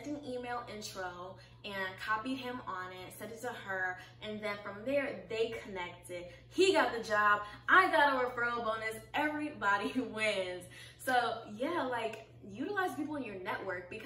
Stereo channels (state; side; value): identical; both; correlation 1.00